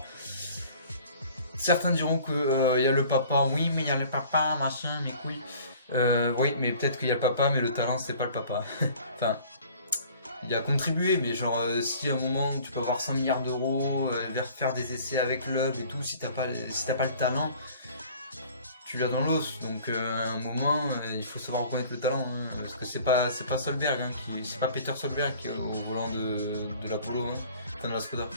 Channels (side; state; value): both; inverted; correlation -0.49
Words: Certains diront que y a le papa, oui mais il y a le papa, machin, mes couilles. Oui mais peut-être qu'il y a le papa mais le talent c'est pas le papa. Enfin, il a contribué mais genre si à un moment tu peux avoir 100 milliards d'euros, faire des essais avec Loeb et tout, si t'as pas le talent, tu l'as dans l'os. Donc à un moment il faut savoir reconnaître le talent, hein, parce que c'est pas Solberg, hein, c'est pas Peter Solberg qui est au volant de l'Apollo, hein, de la Skoda.